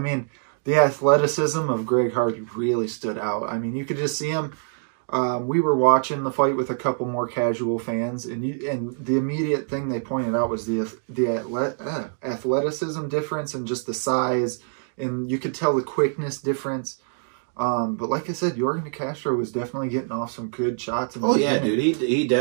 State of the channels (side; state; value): left; silent; digital silence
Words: the athleticism of Greg Hardy really stood out. I mean, you could just see him. We were watching the fight with a couple more casual fans, and the immediate thing they pointed out was the athleticism difference and just the size, and you could tell the quickness difference. But like I said, Yorgan De Castro was definitely getting off some good shots. In the beginning. Dude, he